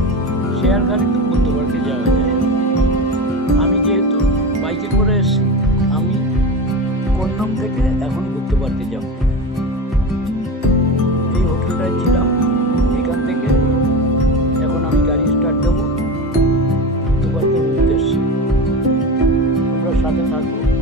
শেয়ার গাড়িতে বুদ্ধ পার্কে যাওয়া যায়। আমি যেহেতু বাইকে করে এসেছি, আমি কন্নম থেকে এখন বুদ্ধ পার্কে যাব। এই হোটেলটায় ছিলাম, এখান থেকে এখন আমি গাড়ি স্টার্ট দেবো বুদ্ধ পার্কের উদ্দেশ্যে। তোমরা সাথে থাকো,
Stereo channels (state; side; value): normal; both; correlation 0.25